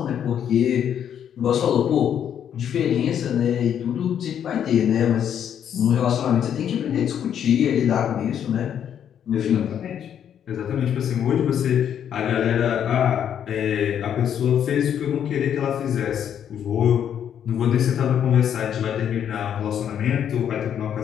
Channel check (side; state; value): right; quieter; 9.1 dB